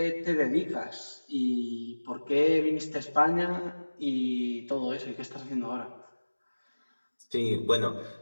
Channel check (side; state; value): both; inverted; correlation -1.00